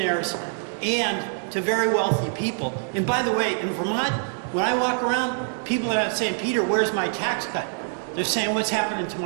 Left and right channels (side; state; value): left; silent; digital silence